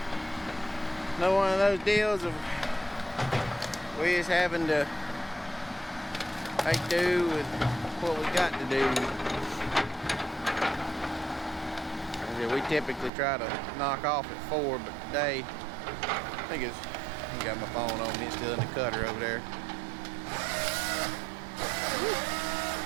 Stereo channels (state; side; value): drops out; left; at 13.1 s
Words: another one of those deals of we just having to make do with what we got to do. We typically try to knock off at 4, but today I got my phone on me. It's still in the cutter over there.